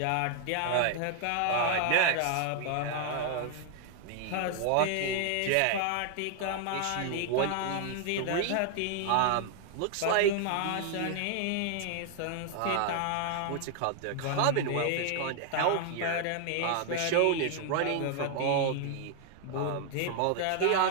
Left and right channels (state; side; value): different; both; correlation 0.00